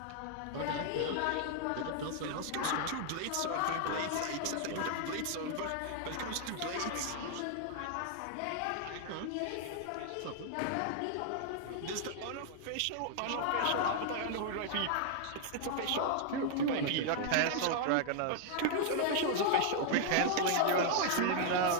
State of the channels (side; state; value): both; different; correlation 0.00